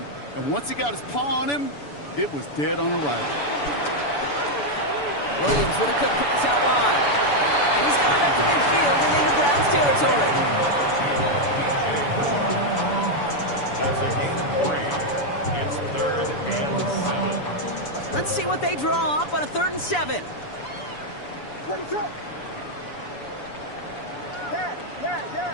And once he got his paw on him, it was dead on arrival. Williams with a quick pass out wide. And he's got it up to midfield and into Browns territory. That's a gain of 3. It's third and 7. Let's see what they draw up on a 3rd and 7. 22. Yeah.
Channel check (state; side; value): late; right; 7.0 ms